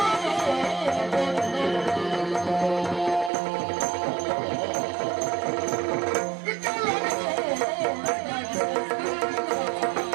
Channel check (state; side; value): drops out; left; at 3.3 s